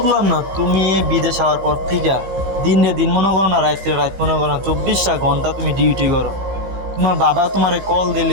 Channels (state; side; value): late; left; 15 ms